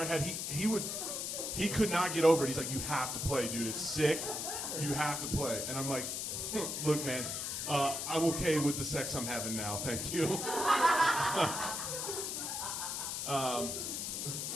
had, he could not get over it. He's like, you have to play, dude. It's sick. You have to play. And I'm like, look, man, I'm okay with the sex I'm having now. Thank you.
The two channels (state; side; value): noise; left; hiss, 3 dB below the sound